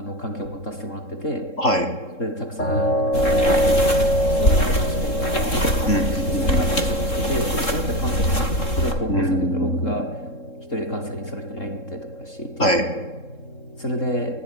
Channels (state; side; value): late; right; 3.7 ms